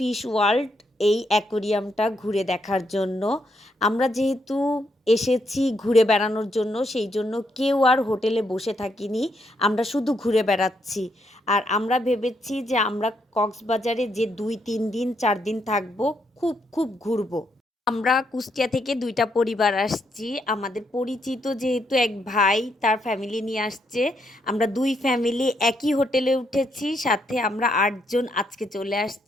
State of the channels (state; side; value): normal; both; correlation 0.77